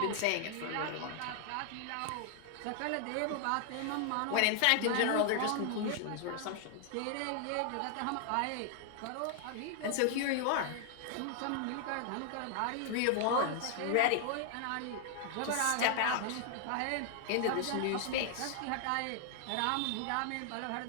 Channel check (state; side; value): different; both; correlation 0.00